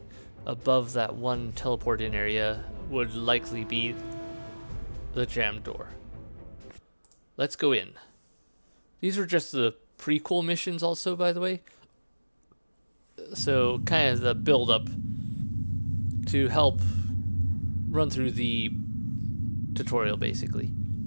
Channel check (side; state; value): both; inverted; correlation -1.00